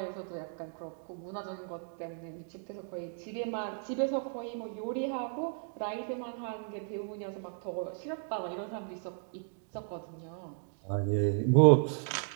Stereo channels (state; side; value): silent; left; 55 dB below the other